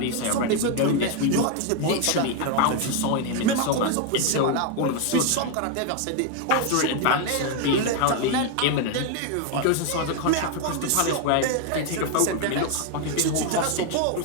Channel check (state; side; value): different; both; correlation 0.01